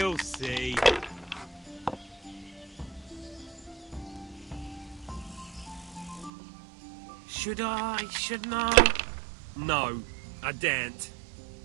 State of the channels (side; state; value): left; drops out; at 6.3 s